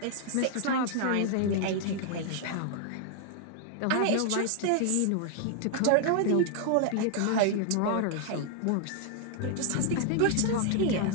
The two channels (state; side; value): different; both; correlation 0.00